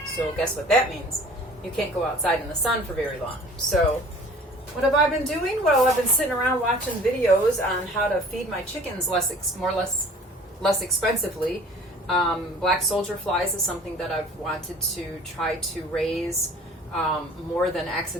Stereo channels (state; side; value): normal; both; correlation 0.48